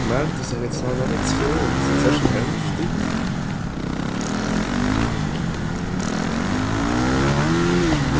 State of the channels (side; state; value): both; identical; correlation 1.00